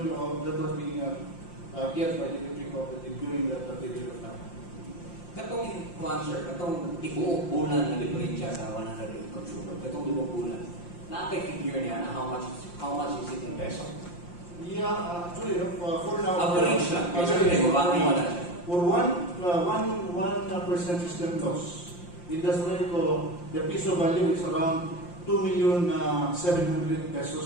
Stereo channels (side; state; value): right; late; 5.7 ms